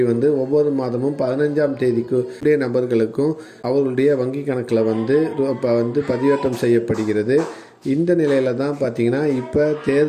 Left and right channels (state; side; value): identical; both; correlation 1.00